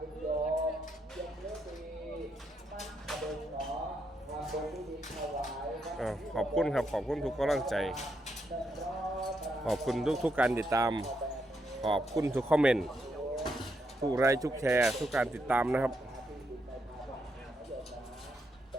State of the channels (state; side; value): normal; both; correlation 0.80